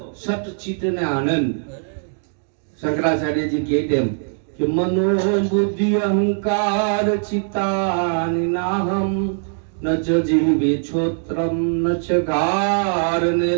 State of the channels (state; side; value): silent; left; digital silence